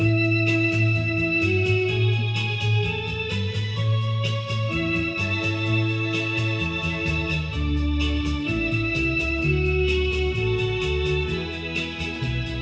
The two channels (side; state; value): both; identical; correlation 1.00